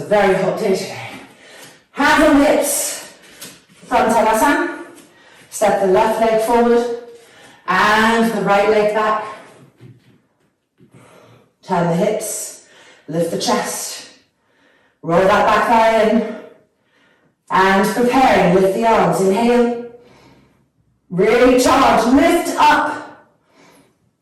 a very hot day today. Hands on hips. From Tadasana, step the left leg forward and the right leg back. Turn the hips, lift the chest, roll that back thigh in, and preparing, lift the arms. Inhale, really charge, lift up,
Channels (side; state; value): both; identical; correlation 1.00